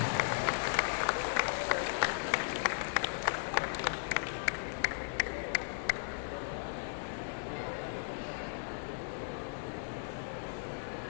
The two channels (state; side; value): silent; right; digital silence